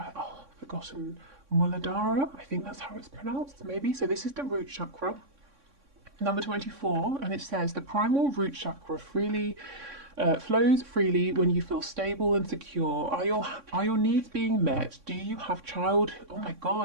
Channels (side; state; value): left; late; 3.6 ms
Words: forgotten, Muladhara, I think that's how it's pronounced, maybe. So this is the root chakra, number 24, and it says the primal root chakra flows freely when you feel stable and secure. Are your needs being met? Do you have